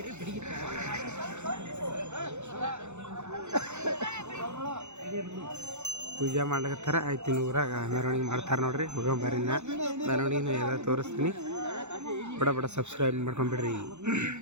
ಪೂಜೆ ಮಾಡ್ಲಿಕತ್ತಾರ. ಆಯ್ತು ಇನ್ನು ಊರಾಗ ಮೆರವಣಿಗೆ ಮಾಡ್ತಾರೆ ನೋಡ್ರಿ. ಹೋಗೋಬಾರಿನ ಮೆರವಣಿಗೆನ ಎಲ್ಲ ತೋರಿಸ್ತೀನಿ. ಬಡ ಬಡ ಸಬ್ಸ್ಕ್ರೈಬ್ ಮಾಡ್ಕೊಂಬಿಡ್ರಿ.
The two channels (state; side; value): late; left; 0.83 ms